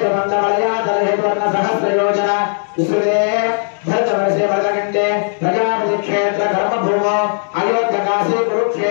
सहस्रयोजन विस्तृते भरतवर्षे भरतकण्ठे प्रजापति क्षेत्र कर्मभूमो अयोध्यकाशी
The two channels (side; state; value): right; silent; digital silence